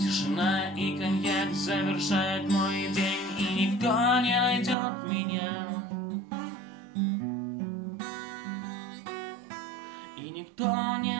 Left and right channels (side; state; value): left; drops out; at 4.8 s